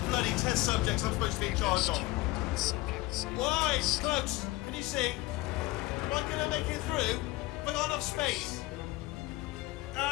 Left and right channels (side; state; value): right; quieter; 19.4 dB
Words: bloody test subjects I'm supposed to be in charge of. Subjects. Why? Close. Can you see? Am I gonna make it through? Have I got enough space?